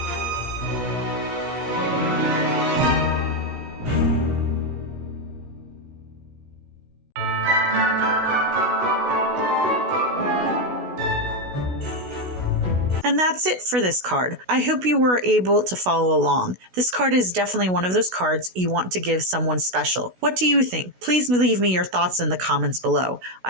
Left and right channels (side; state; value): left; late; 16 ms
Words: And that's it for this card. I hope you were able to follow along. This card is definitely one of those cards you want to give someone special. What do you think? Please leave me your thoughts in the comments below.